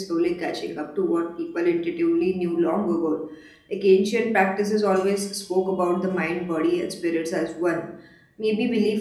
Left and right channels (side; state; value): both; identical; correlation 1.00